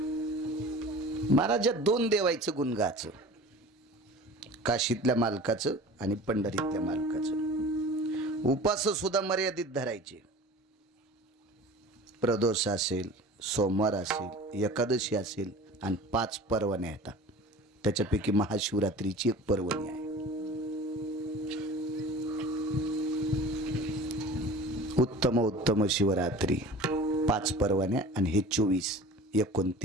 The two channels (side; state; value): both; normal; correlation 0.40